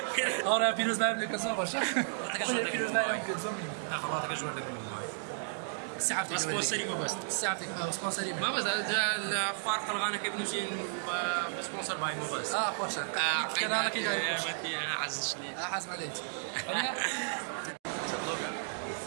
أنا بيروز باي لكم زور بس بيروز باي لكم زور خلاص كجور لكم ساعتك سبونسري ما بس ساعتك سبونسري ما بس الفارق الغانا كيف نمشي بسبونسر باي مو بس خوش كان لك كده انا عزشني حاز عليك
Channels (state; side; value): silent; left; digital silence